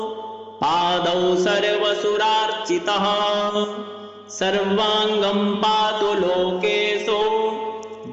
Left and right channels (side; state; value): both; identical; correlation 1.00